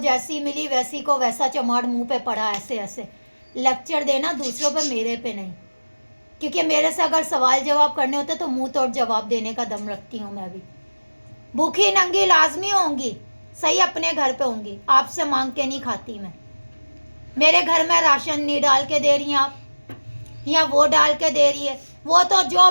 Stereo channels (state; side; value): inverted; both; correlation -1.00